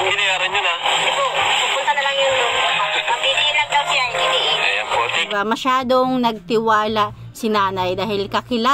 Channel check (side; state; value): both; identical; correlation 1.00